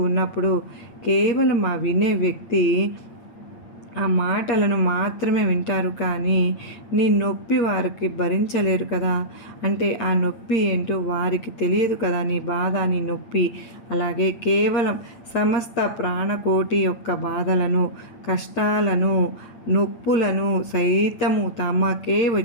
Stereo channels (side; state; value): right; late; 8.7 ms